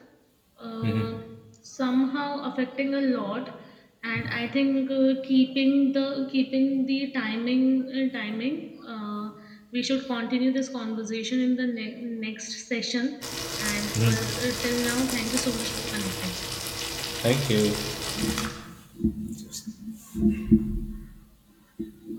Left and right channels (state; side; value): identical; both; correlation 1.00